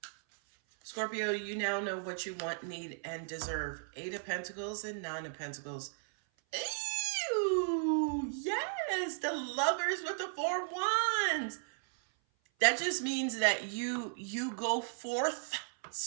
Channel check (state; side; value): silent; left; 54 dB below the other